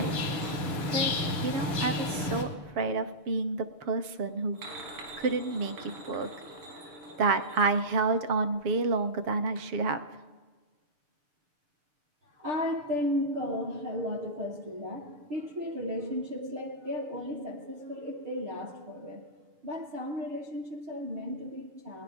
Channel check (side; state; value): left; late; 6.7 ms